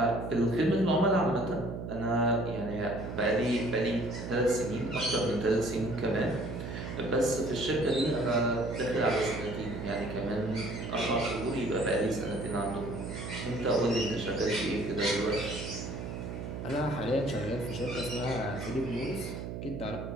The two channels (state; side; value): noise; right; hum, 7 dB below the sound